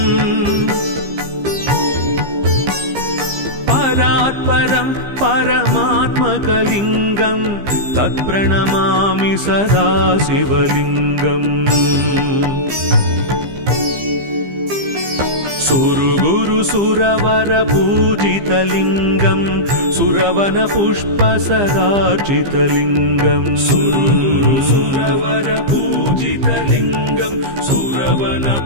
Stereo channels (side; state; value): left; late; 15 ms